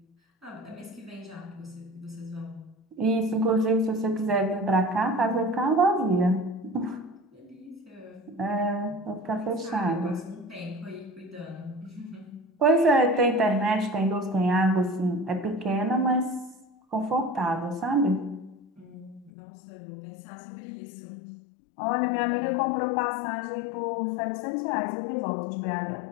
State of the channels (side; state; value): right; drops out; at 19.3 s